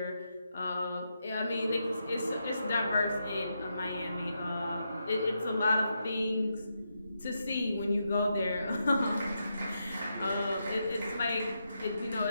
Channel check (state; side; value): inverted; both; correlation -0.84